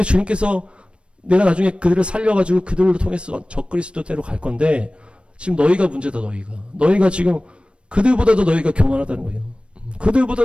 주님께서 내가 나중에 그들을 살려가지고 그들로 통해서 적그리스도대로 갈 건데, 지금 너희가 문제다. 너희가 지금 그들보다도 너희가 교만하다는 거예요.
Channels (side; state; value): left; late; 0.058 ms